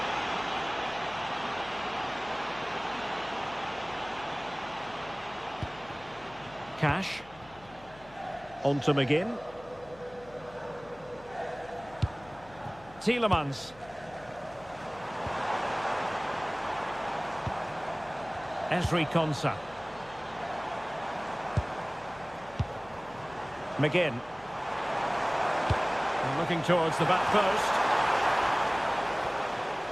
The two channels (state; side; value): noise; left; hum, 22 dB below the sound